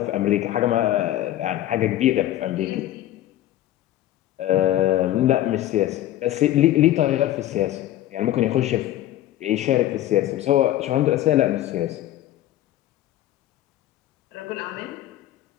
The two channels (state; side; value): quieter; right; 13.8 dB